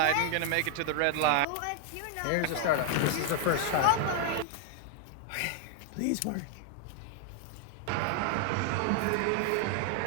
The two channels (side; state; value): both; different; correlation 0.00